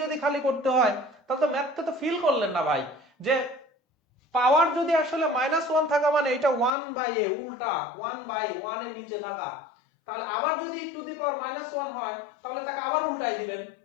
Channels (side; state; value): right; drops out; at 6.8 s